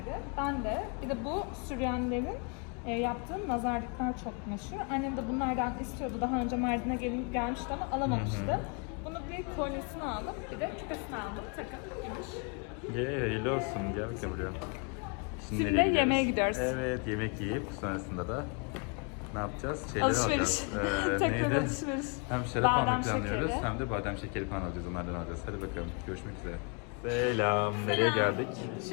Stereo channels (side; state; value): right; quieter; 35.8 dB